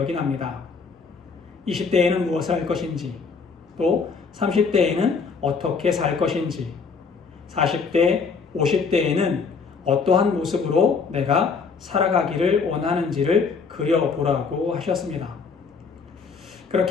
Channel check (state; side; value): quieter; right; 5.2 dB